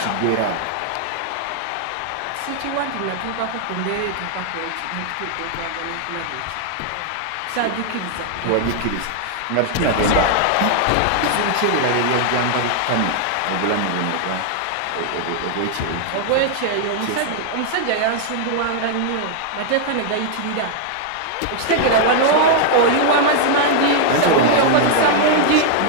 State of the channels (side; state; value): both; different; correlation -0.01